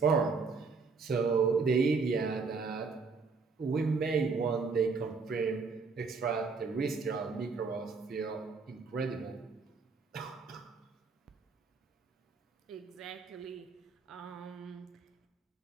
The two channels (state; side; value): quieter; left; 4.7 dB